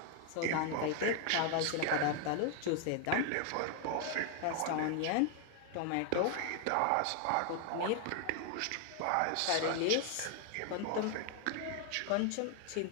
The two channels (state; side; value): different; both; correlation 0.00